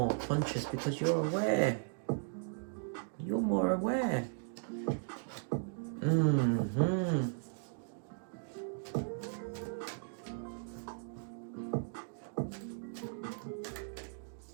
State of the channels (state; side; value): silent; left; digital silence